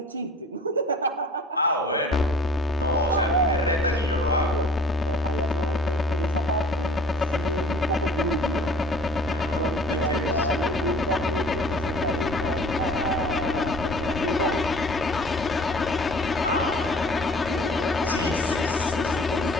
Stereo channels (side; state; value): both; normal; correlation 0.49